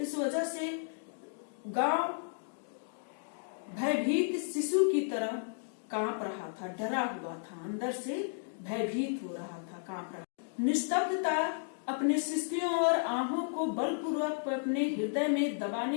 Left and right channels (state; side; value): silent; right; digital silence